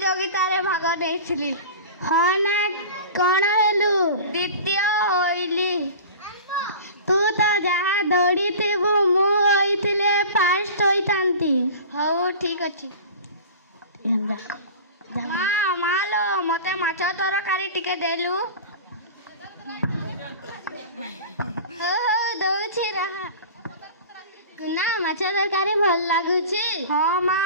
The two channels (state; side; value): inverted; both; correlation -0.36